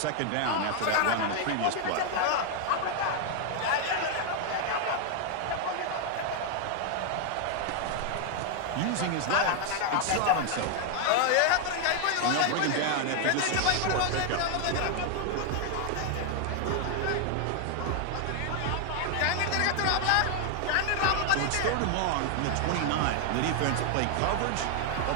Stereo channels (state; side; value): different; both; correlation 0.00